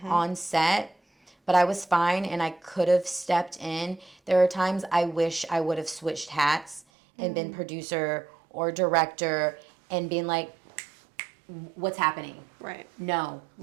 on set, but I was fine and I could have stepped in. There are times I wish I would have switched hats and been producer or director and been like, what's happening? Right. No,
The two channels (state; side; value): drops out; left; at 6.9 s